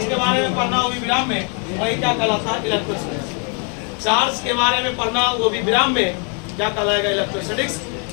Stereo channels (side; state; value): right; quieter; 39.5 dB